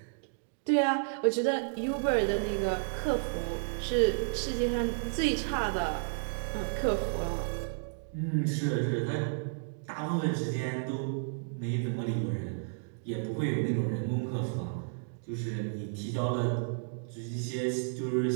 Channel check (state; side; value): silent; left; digital silence